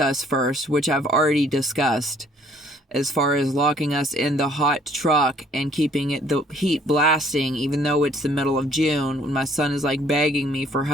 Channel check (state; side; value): normal; both; correlation 0.61